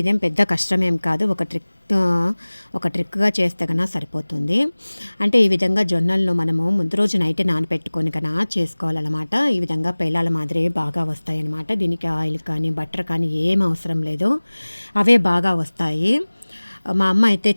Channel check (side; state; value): both; inverted; correlation -1.00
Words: పెద్ద కష్టమేం కాదు, ఒక ట్రిక్గా చేస్తే కన్నా సరిపోతుంది. అంటే ఈ విధంగా జొన్నలను మనము ముందు రోజు నైట్ నానపెట్టుకొని కన్నా చేసుకోవాలన్నమాట. ఈ విధంగా పేలాల మాదిరి బాగా వస్తాయన్నమాట. దీనికి ఆయిల్ కానీ బటర్ కానీ ఏం అవసరం లేదు, అవే బాగా వస్తాయి. మా అమ్మ అయితే